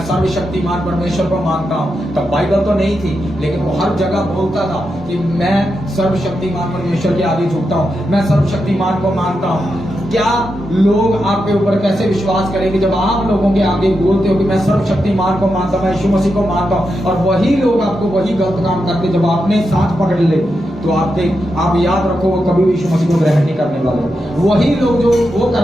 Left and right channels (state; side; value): normal; both; correlation 0.86